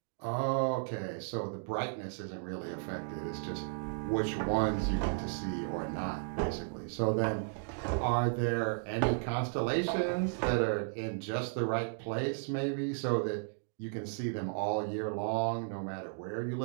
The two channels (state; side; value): silent; left; digital silence